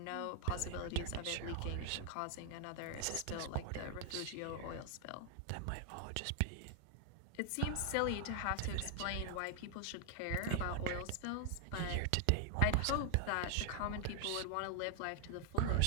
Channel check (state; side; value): different; both; correlation 0.00